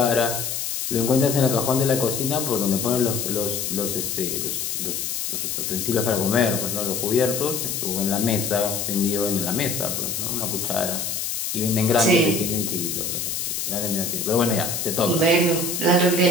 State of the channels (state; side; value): noise; left; hiss, 3 dB below the sound